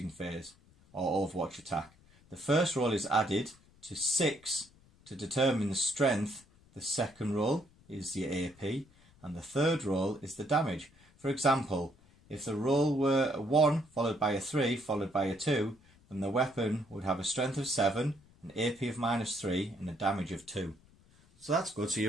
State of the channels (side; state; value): left; noise; rumble, 28 dB below the sound